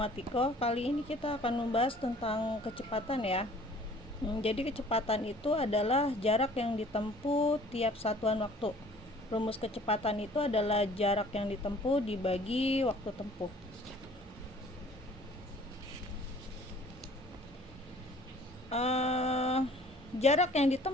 Kali ini kita akan membahas tentang kecepatan ya. Jadi kecepatan itu adalah jarak yang ditempuh tiap satuan waktu. Rumus kecepatan itu adalah jarak yang ditempuh dibagi waktu tempuh. Uh, Jarak yang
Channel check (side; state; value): both; normal; correlation 0.52